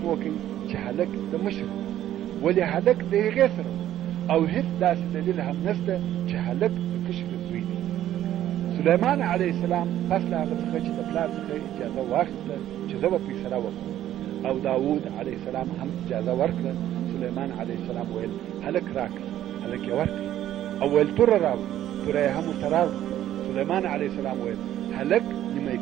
وکړي چې هلک د مشر ولې هلک د هغې سره او هیڅ داسې دلیل هم نشته چې هلک د کشرې زوی دی. سلیمان علیه السلام پس له هغه څخه چې د پلار څخه اجازه واخیسته چې زه به فیصله وکړم او داود علیه السلام هم اجازه ورکړه. سلیمان علیه السلام ویل هلک راکړه، هلک یې ورکړه او ویل توره راوړه، توره یې هم ورته راوړه. سلیمان علیه السلام ویل هلک نیمه یې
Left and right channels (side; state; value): left; quieter; 12.3 dB